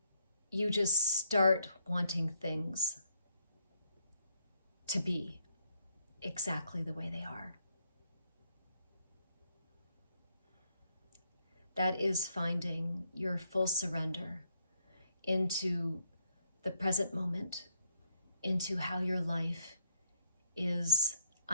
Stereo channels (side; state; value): both; inverted; correlation -0.74